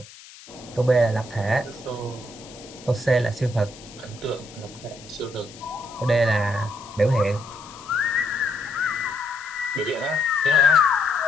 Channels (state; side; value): noise; left; hiss, 19 dB below the sound